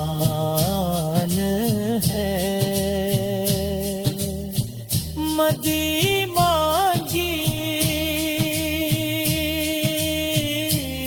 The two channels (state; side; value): identical; both; correlation 1.00